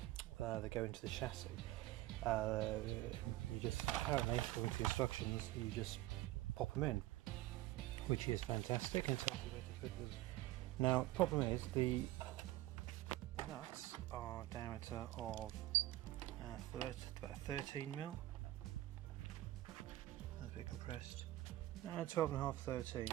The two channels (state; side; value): quieter; left; 16.4 dB